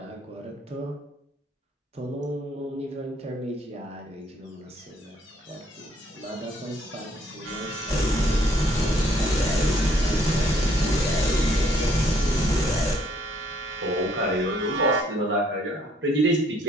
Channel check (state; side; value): normal; both; correlation 0.65